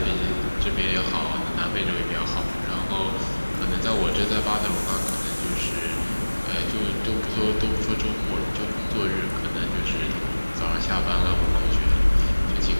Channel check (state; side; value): inverted; both; correlation -1.00